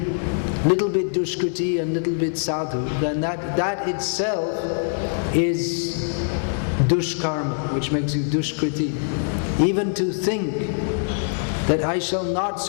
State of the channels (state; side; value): silent; right; digital silence